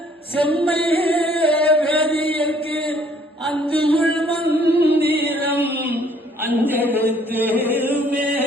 செம்மை வேதியர்க்கு அந்துள் மந்திரம் அஞ்செழுத்துமே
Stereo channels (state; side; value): normal; both; correlation 0.61